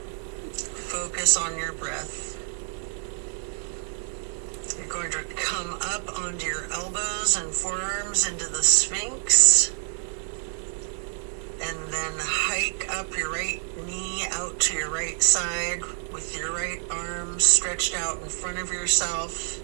Focus on your breath. You're going to come up onto your elbows and forearms into the Sphinx. And then hike up your right knee out to your right side with your right arm stretched out in front of yourself.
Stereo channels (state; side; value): silent; left; 60 dB below the other